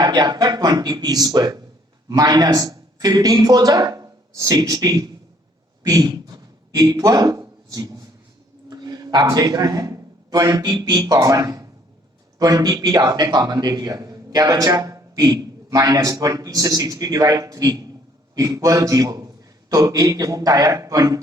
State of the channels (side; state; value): both; normal; correlation 0.62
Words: गया आपका 20p square minus 15 4 60p equal 0। आप देख रहे हैं 20p कॉमन है, 20p आपने कॉमन दे दिया, क्या बचा? p माइनस 20 से 60 डिवाइड 3 इक्वल 0। तो एक रूट आया